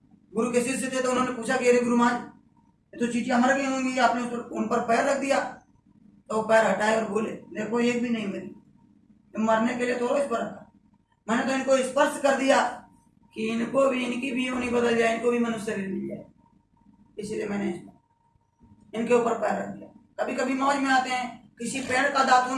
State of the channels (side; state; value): both; identical; correlation 1.00